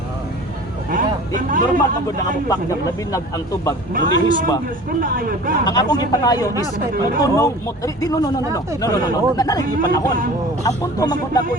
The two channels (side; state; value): both; normal; correlation 0.42